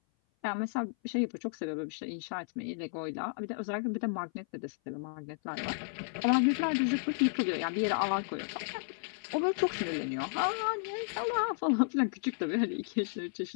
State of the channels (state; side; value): silent; right; 56 dB below the other